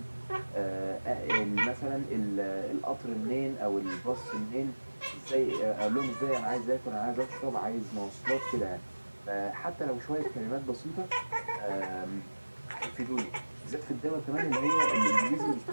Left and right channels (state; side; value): inverted; both; correlation -1.00